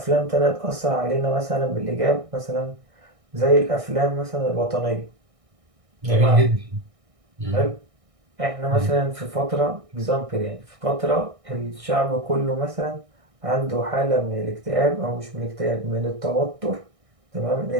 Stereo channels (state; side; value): late; left; 1.6 ms